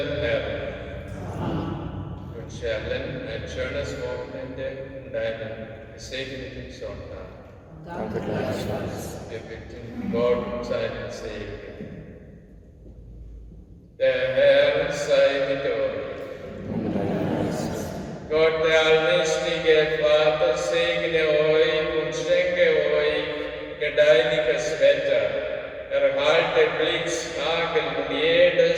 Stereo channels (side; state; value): both; identical; correlation 1.00